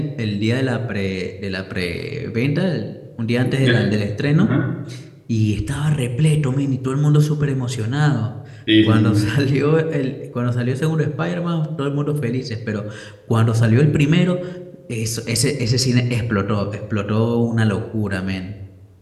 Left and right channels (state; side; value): identical; both; correlation 1.00